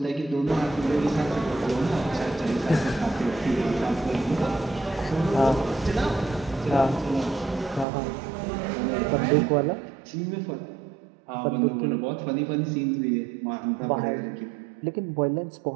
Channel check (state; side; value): drops out; left; at 7.9 s